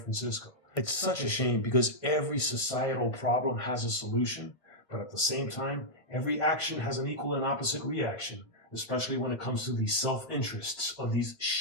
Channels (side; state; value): right; late; 1.6 ms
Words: It's such a shame because every societal problem has a solution, but at the same time, every action has an equal and opposite reaction, especially when it comes to the self-interests of these